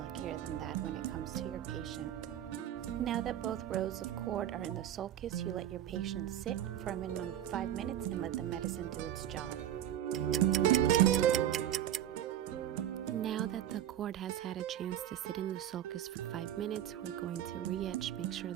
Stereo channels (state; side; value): quieter; left; 11.4 dB